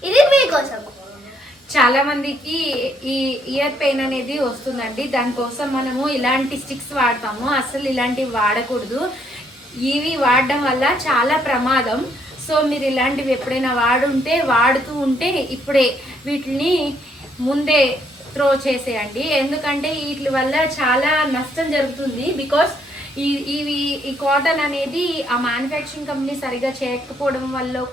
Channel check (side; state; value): both; normal; correlation 0.71